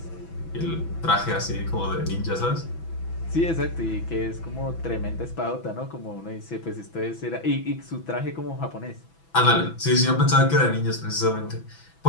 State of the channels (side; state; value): right; late; 6.0 ms